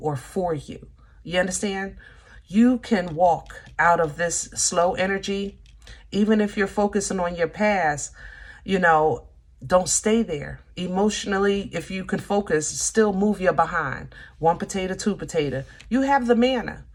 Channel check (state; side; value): identical; both; correlation 1.00